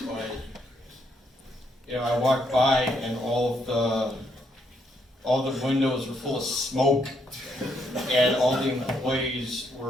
but I walked by and all the windows were full of smoke, and all the employees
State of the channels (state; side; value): normal; both; correlation 0.74